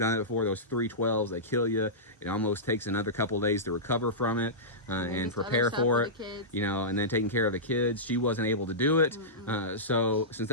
it before, those 312s, they kill you. It almost takes another couple of days to recover from it and prepare for it, and then taking care of the kids. She wasn't able to do it. So since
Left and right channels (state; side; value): normal; both; correlation -0.16